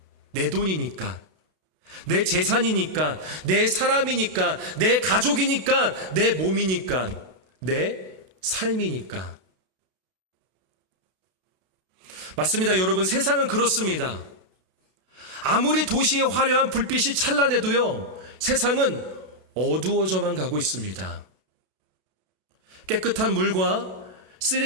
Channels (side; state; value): left; late; 33 ms